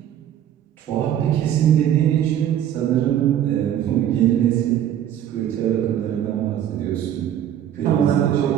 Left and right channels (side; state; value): left; quieter; 10.6 dB